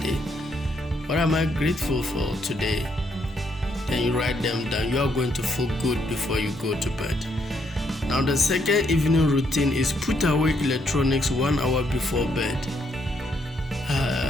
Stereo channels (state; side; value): normal; both; correlation 0.74